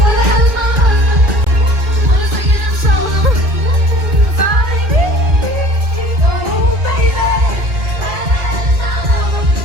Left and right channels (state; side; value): late; left; 2.4 ms